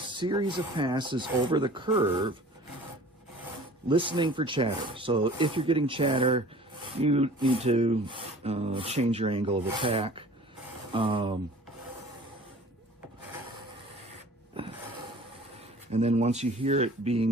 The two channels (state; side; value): normal; both; correlation 0.46